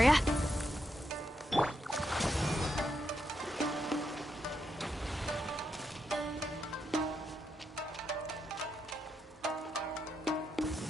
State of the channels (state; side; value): normal; both; correlation 0.82